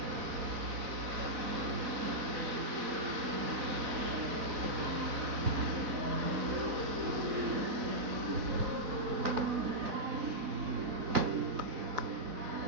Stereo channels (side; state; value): left; late; 4.0 ms